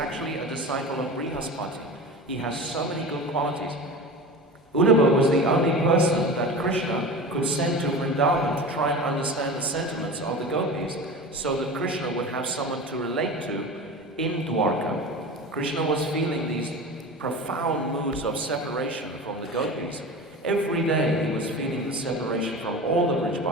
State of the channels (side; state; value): both; normal; correlation 0.31